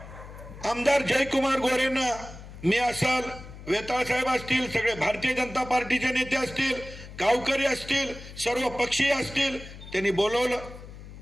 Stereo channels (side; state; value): left; noise; hum, 15 dB below the sound